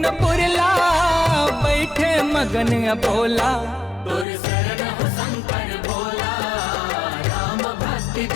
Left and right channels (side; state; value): right; drops out; at 4.2 s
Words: पुरला, बैठे मगन अबोला। तुर शरण हो शंकर भोला, राम भक्ति